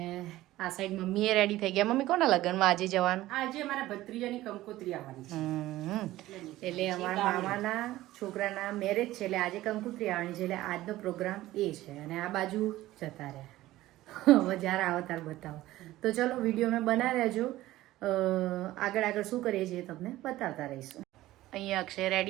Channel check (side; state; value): left; quieter; 16.1 dB